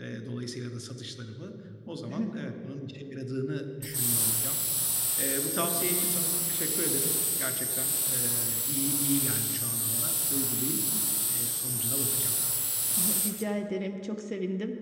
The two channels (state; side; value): identical; both; correlation 1.00